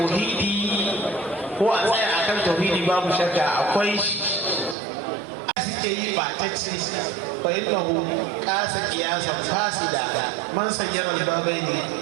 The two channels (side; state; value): left; drops out; at 4.8 s